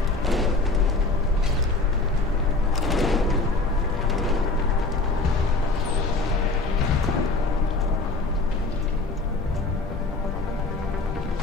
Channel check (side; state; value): right; quieter; 3.4 dB